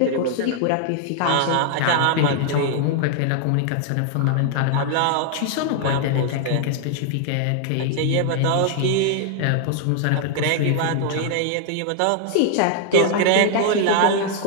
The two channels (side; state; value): both; different; correlation 0.00